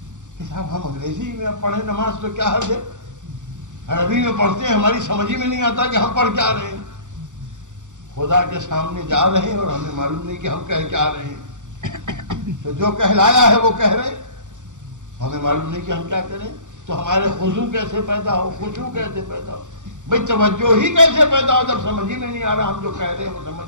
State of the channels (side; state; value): left; late; 0.86 ms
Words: کہ صاحب ہم انگریزی میں پڑھیں نماز تو کیا حرج ہے؟ عربی میں پڑھتے ہیں، ہماری سمجھ ہی میں نہیں آتا کہ ہم پڑھ کیا رہے ہیں. خدا کے سامنے جا رہے ہیں اور ہمیں معلوم نہیں کہ ہم کہہ کیا رہے ہیں. تو جو کہلایا ہے وہ کہہ رہے ہیں، ہمیں معلوم نہیں کہ ہم کیا کریں. تو ہمارے خضوع کیسے پیدا ہو، خشوع کیسے پیدا ہو، بھائی توجہ ہی کیسے پیدا ہو جب سمجھ ہی میں نہیں آ رہا. ہم جو کہہ رہے ہیں وہ سمجھ